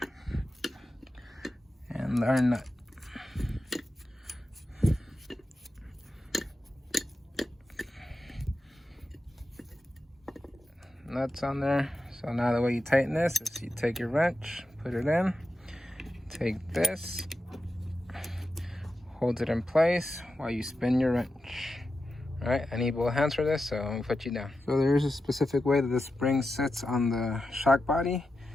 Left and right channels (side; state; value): both; normal; correlation 0.90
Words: and our nut. Nuts on there. So now the way you tighten this is you take your wrench, put it in, take this, hold it in place while you spin your wrench. All right, I need both hands for this, so I'm gonna put you down. So there's a specific way that the spring sits on the shock body,